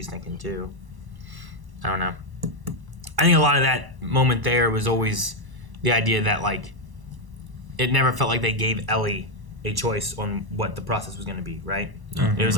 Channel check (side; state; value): left; late; 1.1 ms